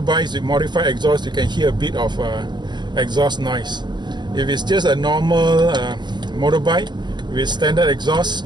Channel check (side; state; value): left; late; 0.21 ms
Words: with modified exhaust, you can hear a bit of exhaust noise. If it's just a normal motorbike with standard exhaust,